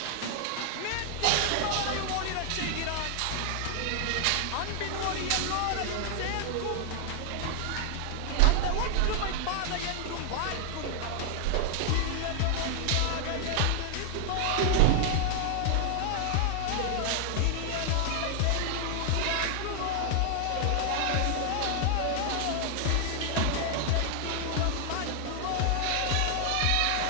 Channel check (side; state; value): both; different; correlation 0.00